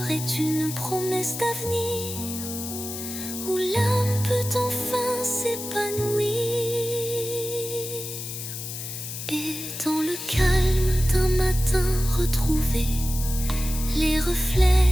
est une promesse d'avenir, où l'âme peut enfin s'épanouir. Et dans le calme d'un matin retrouvé, les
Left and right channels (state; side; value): noise; left; hiss, 8 dB below the sound